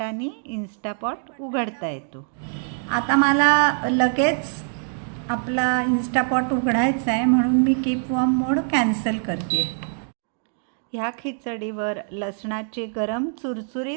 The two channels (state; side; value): silent; left; 62 dB below the other